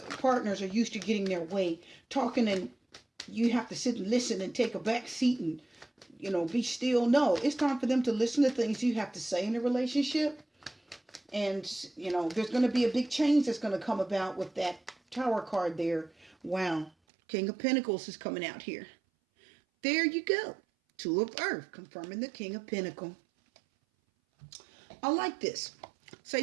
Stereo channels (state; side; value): drops out; left; at 16.9 s